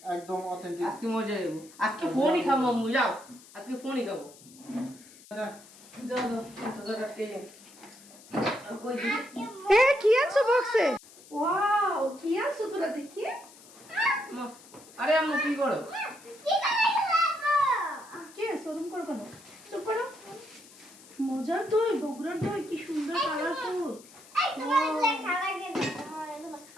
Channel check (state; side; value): noise; left; hiss, 22 dB below the sound